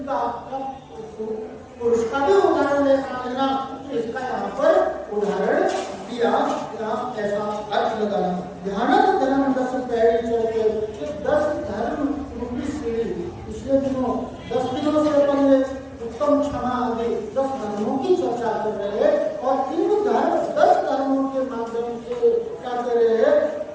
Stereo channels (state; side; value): identical; both; correlation 1.00